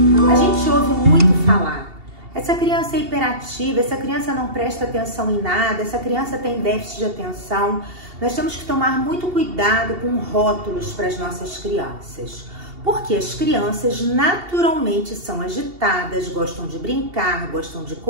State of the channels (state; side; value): late; left; 2.7 ms